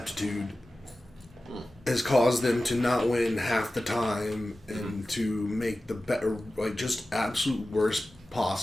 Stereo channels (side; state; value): both; normal; correlation 0.95